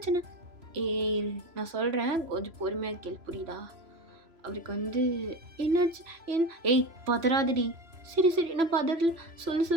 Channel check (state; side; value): late; left; 3.0 ms